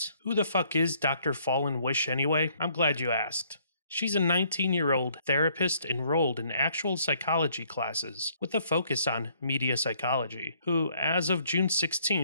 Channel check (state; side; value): inverted; both; correlation -0.64